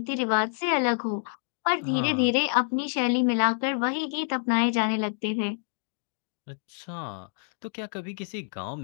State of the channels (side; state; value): right; silent; digital silence